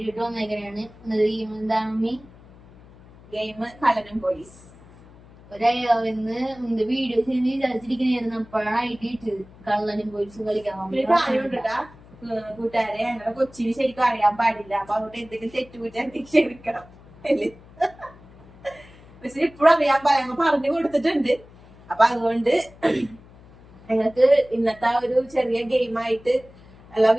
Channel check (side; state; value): left; noise; hum, 23 dB below the sound